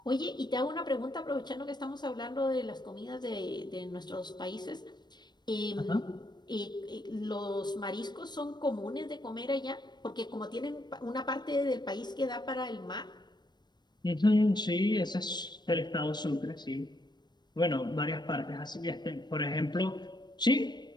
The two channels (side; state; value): right; late; 0.21 ms